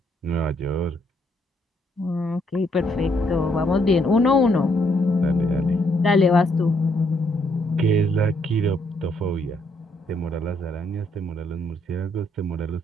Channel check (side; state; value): both; normal; correlation 0.72